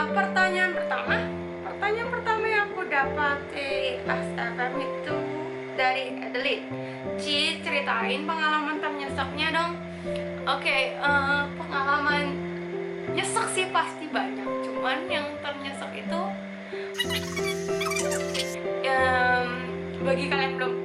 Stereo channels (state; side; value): identical; both; correlation 1.00